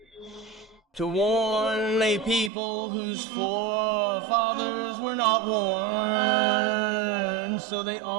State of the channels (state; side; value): drops out; left; at 2.5 s